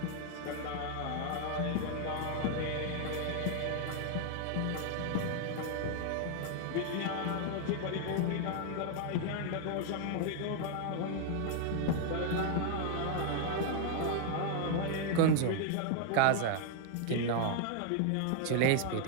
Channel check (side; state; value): both; different; correlation 0.00